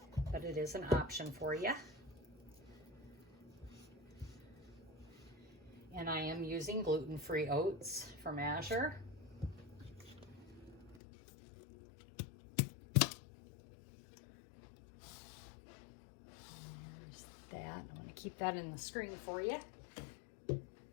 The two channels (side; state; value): right; drops out; at 11.0 s